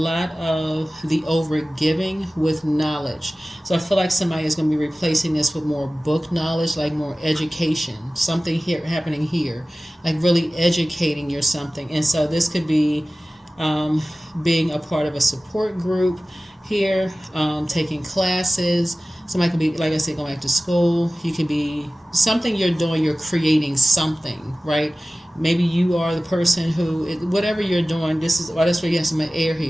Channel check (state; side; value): normal; both; correlation 0.97